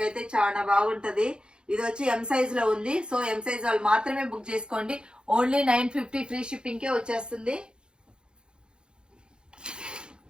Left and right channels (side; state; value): left; late; 0.050 ms